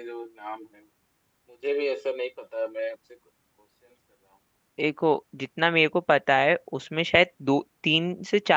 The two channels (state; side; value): identical; both; correlation 1.00